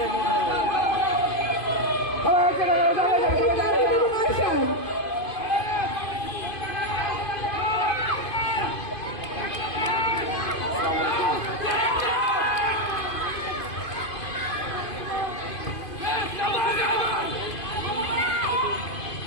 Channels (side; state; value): right; late; 2.5 ms